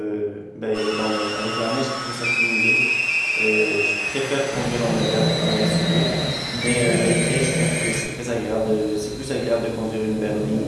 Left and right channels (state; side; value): identical; both; correlation 1.00